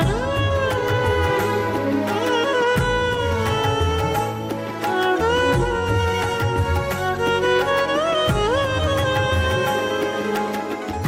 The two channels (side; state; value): both; identical; correlation 1.00